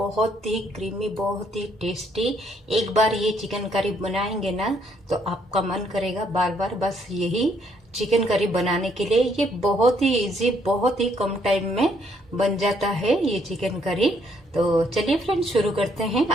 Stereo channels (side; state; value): both; normal; correlation 0.69